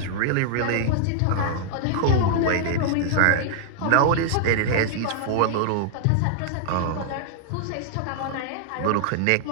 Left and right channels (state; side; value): different; both; correlation -0.01